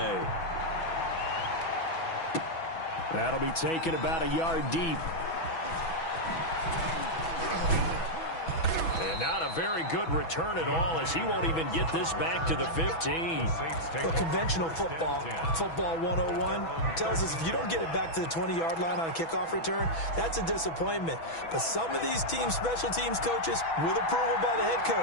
That'll be taken about a yard deep. And not a very good return at all, as he won't even get this back to the 15. Well, conventional football 101, tells us if you don't get it back to the 20-yard line on a kickoff return, that's a disappointment. But some of these special teams coaches, with approval by the head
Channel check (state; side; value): late; right; 6.1 ms